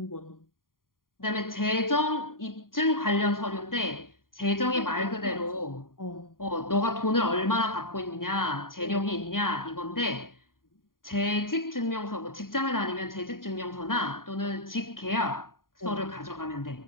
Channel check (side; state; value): right; late; 0.91 ms